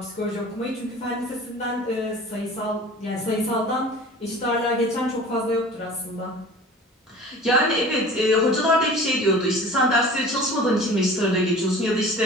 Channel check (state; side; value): normal; both; correlation 0.42